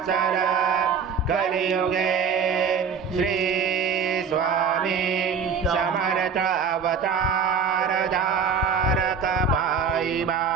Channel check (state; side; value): quieter; left; 6.0 dB